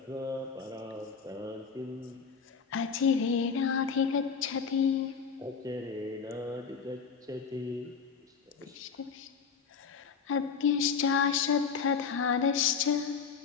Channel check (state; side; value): quieter; right; 6.1 dB